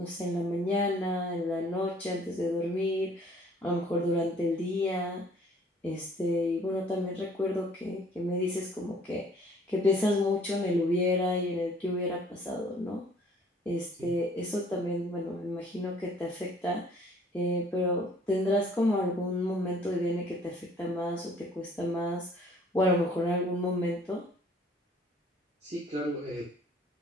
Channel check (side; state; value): both; normal; correlation 0.56